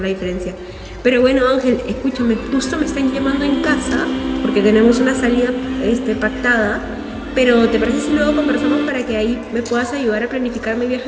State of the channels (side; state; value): both; identical; correlation 1.00